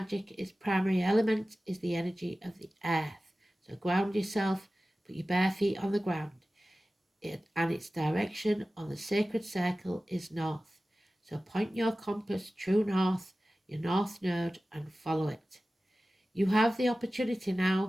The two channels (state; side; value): normal; both; correlation 0.96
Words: its primary element is the energy of the earth. So ground yourself, put your bare feet on the ground, and its direction on the sacred circle is north. So point your compass true north, your north node, and follow it. You have the opportunity